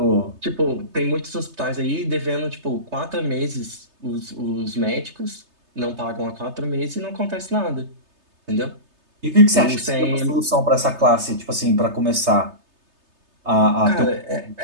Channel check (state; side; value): late; left; 3.3 ms